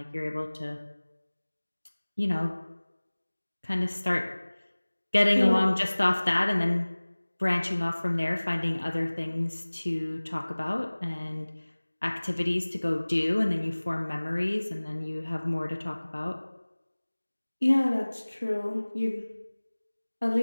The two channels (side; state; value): both; inverted; correlation -1.00